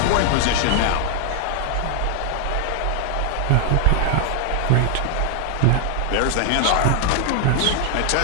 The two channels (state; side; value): different; both; correlation 0.00